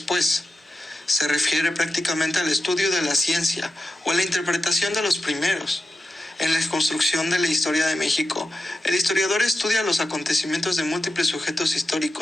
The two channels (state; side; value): normal; both; correlation 0.90